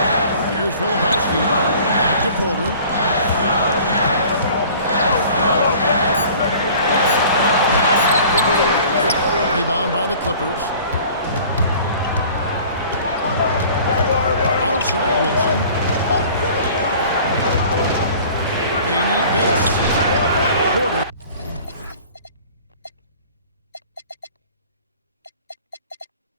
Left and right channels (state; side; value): inverted; both; correlation -0.47